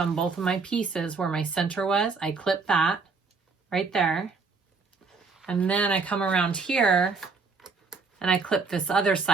both of my pieces where my center was. I clip that right there. And then I come around here and I clip this other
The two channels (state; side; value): quieter; left; 4.6 dB